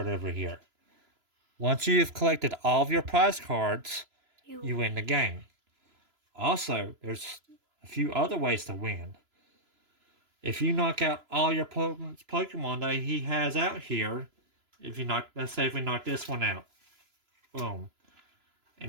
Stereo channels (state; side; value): late; left; 3.0 ms